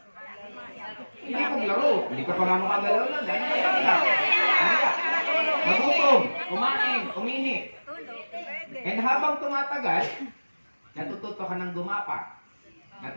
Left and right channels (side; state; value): both; inverted; correlation -1.00